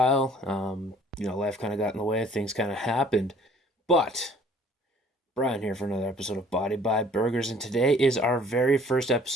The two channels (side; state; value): both; normal; correlation 0.55